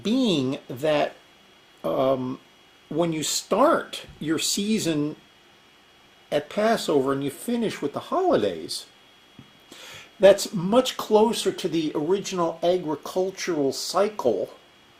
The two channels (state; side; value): identical; both; correlation 1.00